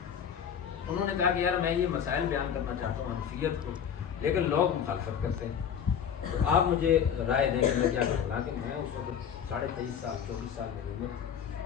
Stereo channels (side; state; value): right; quieter; 8.1 dB